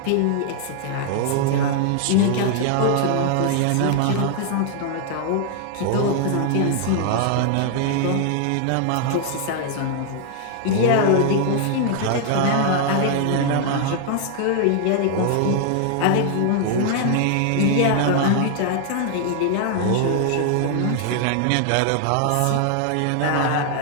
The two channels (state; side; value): different; both; correlation 0.00